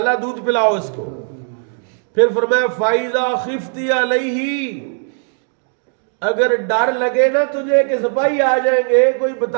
دودھ پلاؤ اس کو. پھر فرمایا فائزہ خفتی علیہ، اگر ڈر لگے نا تجھے کہ سپاہی آ جائیں گے، کوئی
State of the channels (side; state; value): left; silent; 58 dB below the other